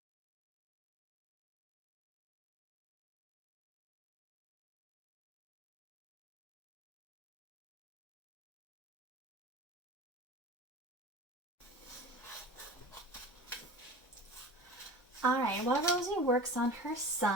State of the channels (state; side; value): normal; both; correlation 0.37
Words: Alright, while Rosie works on her